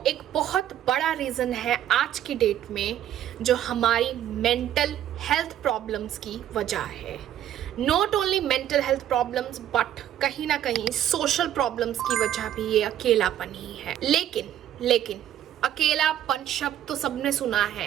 एक बहुत बड़ा रीज़न है आज की डेट में, जो हमारी मेंटल हेल्थ प्रॉब्लम्स की वजह है। Not only mental health problems but कहीं ना कहीं सोशल प्रॉब्लम्स की वजह भी ये अकेलापन ही है। लेकिन अकेलापन शब्द तो सबने सुना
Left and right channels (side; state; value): left; quieter; 11.3 dB